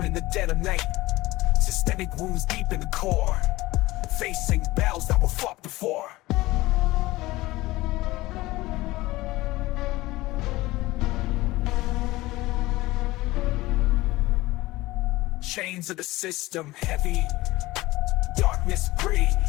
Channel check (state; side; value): quieter; right; 19.0 dB